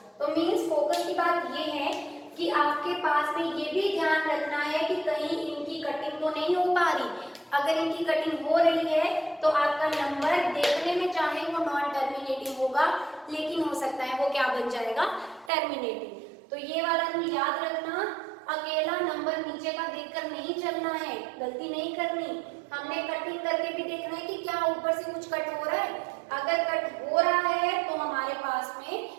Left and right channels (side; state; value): left; drops out; at 15.5 s